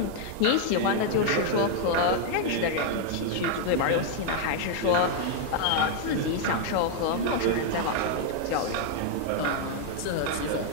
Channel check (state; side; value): different; both; correlation 0.00